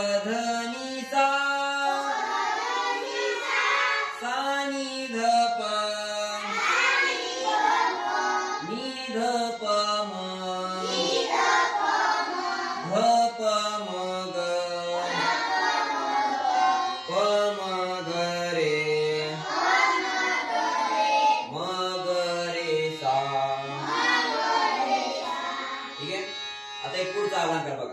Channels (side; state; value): both; identical; correlation 1.00